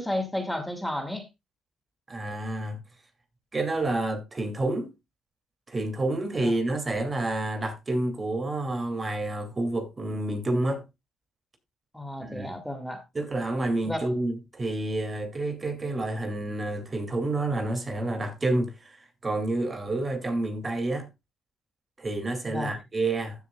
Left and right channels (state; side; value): normal; both; correlation 0.87